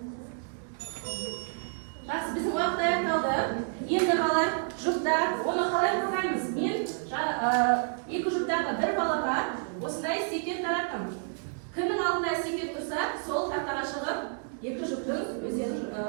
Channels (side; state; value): left; silent; 58 dB below the other